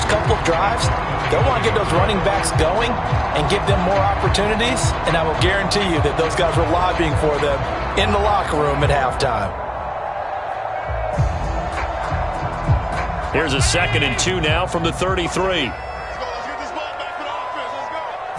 couple of drives, they'll want to get those running backs going and give them more opportunities, and I will guarantee you that those guys were lobbying for them in the locker room at halftime. Here's a 2nd and 2 now from the 33.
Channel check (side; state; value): both; identical; correlation 1.00